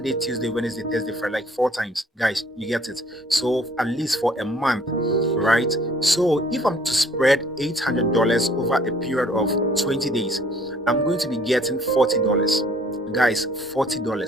Tuesday, Wednesday, Thursday, Friday, like 4 times. Guys, you get it. So at least for a month, right? So if I'm to spread $800 over a period of 20 days, I'm going to be getting $40. Guys,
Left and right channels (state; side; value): normal; both; correlation 0.58